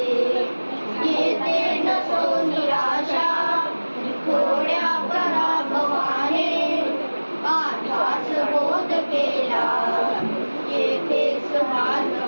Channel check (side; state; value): both; inverted; correlation -1.00